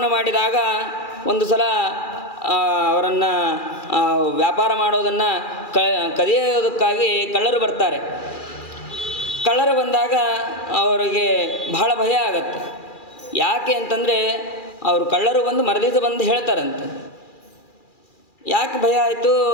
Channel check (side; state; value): right; late; 2.4 ms